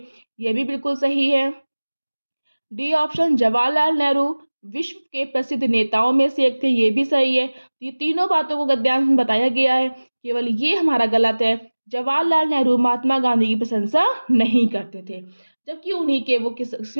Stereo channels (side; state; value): both; inverted; correlation -1.00